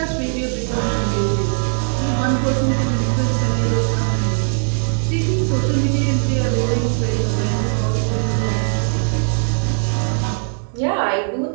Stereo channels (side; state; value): left; silent; digital silence